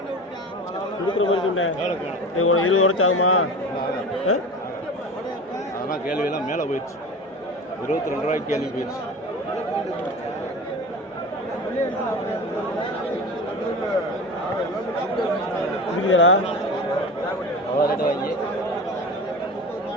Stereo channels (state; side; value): normal; both; correlation 0.32